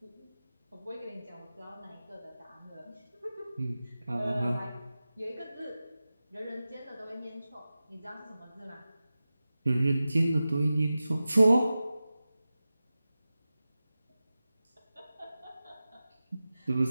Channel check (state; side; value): inverted; both; correlation -0.95